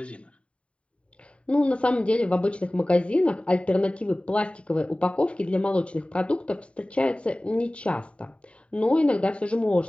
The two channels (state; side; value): late; right; 0.061 ms